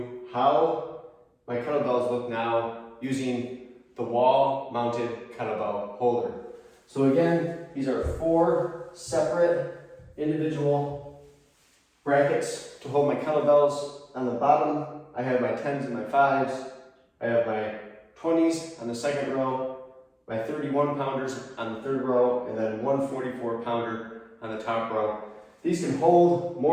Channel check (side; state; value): both; identical; correlation 1.00